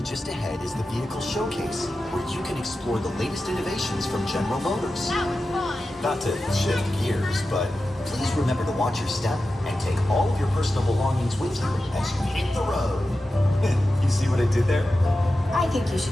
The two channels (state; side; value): normal; both; correlation 0.93